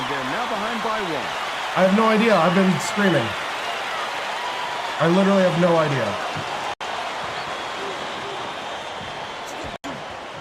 they're now behind by one. I have no idea. I've been screaming. I literally have no idea.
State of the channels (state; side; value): identical; both; correlation 1.00